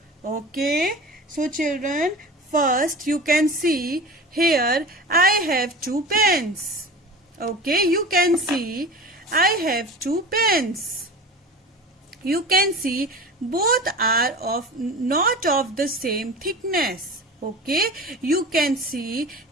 Okay, so children, first you can see here I have 2 pens. Okay, you can see I have 2 pens. You can see both are not of the same thickness. Okay, you can see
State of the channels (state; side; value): normal; both; correlation 0.34